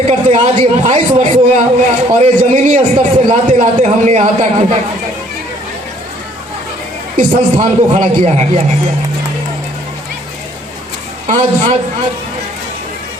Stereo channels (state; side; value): normal; both; correlation 0.61